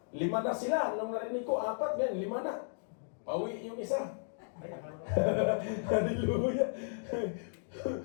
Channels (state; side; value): silent; right; digital silence